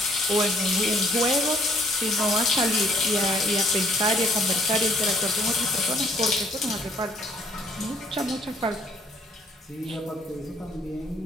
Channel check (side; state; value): both; normal; correlation 0.62